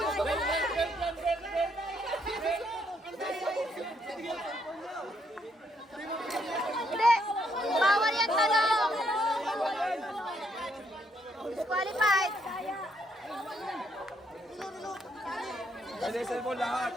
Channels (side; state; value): both; normal; correlation 0.73